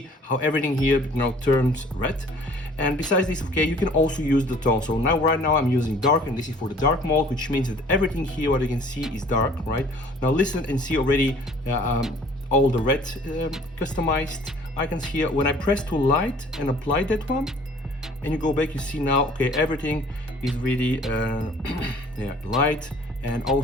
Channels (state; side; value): normal; both; correlation 0.52